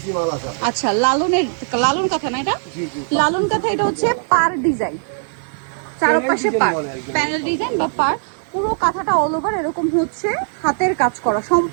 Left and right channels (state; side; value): silent; left; digital silence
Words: মাল আছে। আচ্ছা, লালন কাঁথা না এটা? লালন কাঁথা, এটা হচ্ছে পার ডিজাইন, চারপাশে পার প্যানেল ডিজাইন বা পার। পুরো কাঁথাটা অল ওভার এরকম হচ্ছে হাতের কাজ করা